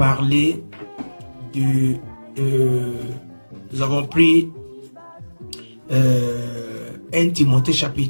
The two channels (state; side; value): inverted; both; correlation -1.00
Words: nous avons pris 1 Timothée